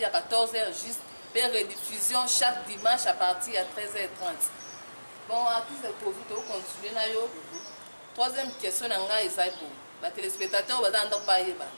de 14h juste et rediffusion chaque dimanche à partir de 13h30. Bon artiste de Covid on continue na yo. Troisième question na nga ezai pour ba téléspectateurs ba danda pa yeba.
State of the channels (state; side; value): inverted; both; correlation -1.00